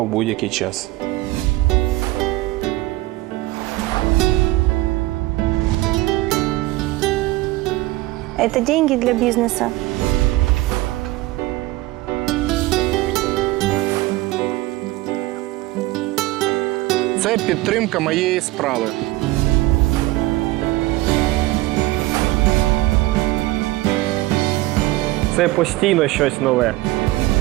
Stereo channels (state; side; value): quieter; left; 18.7 dB